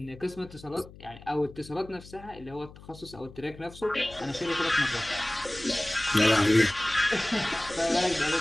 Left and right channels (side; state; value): left; noise; hum, 19 dB below the sound